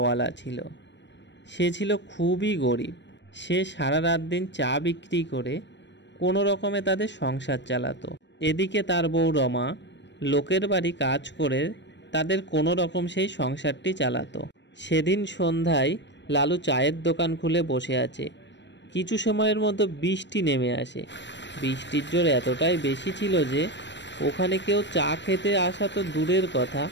ছিল। সে ছিল খুবই গরিব। সে সারা রাত দিন চা বিক্রি করে কোনো রকমে তাদের সংসার চালাতো। এদিকে তার বউ রমা লোকের বাড়ি কাজ করে তাদের কোনো রকম সেই সংসারটি চালাতো। সেদিন সন্ধ্যায় লালু চায়ের দোকান খুলে বসে আছে। কিছু সময়ের মধ্যে বৃষ্টি নেমে আসে। বৃষ্টির জোর এতটাই বেশি ছিল যে ওখানে কেউ চা খেতে আসা তো দূরের কথা,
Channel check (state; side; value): late; right; 0.52 ms